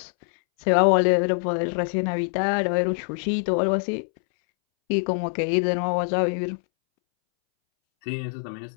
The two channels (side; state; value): right; silent; 63 dB below the other